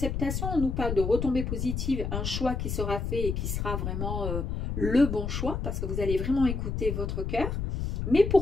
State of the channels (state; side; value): noise; left; rumble, 2 dB below the sound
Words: on nous parle de retombées positives, un choix qui sera fait et qui sera vraiment le bon choix, parce que vous allez vraiment écouter votre cœur. Mais